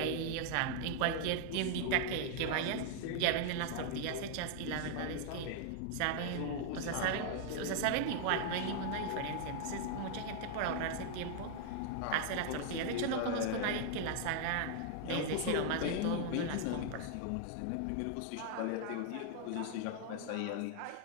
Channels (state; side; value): different; both; correlation 0.00